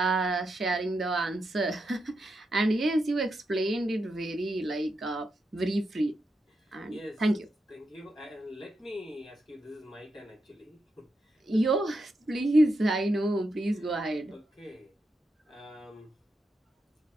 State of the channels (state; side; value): normal; both; correlation 0.85